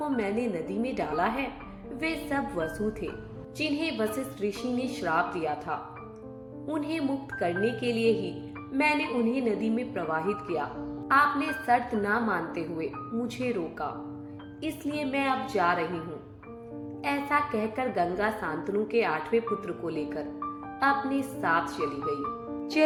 मैंने नदी में डाला है वे सब वसु थे, जिन्हें वशिष्ठ ऋषि ने श्राप दिया था। उन्हें मुक्त करने के लिए ही मैंने उन्हें नदी में प्रवाहित किया। आपने शर्त ना मानते हुए मुझे रोका, इसलिए मैं अब जा रही हूँ। ऐसा कहकर गंगा शांतनु के 8वें पुत्र को लेकर अपने साथ चली गई।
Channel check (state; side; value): identical; both; correlation 1.00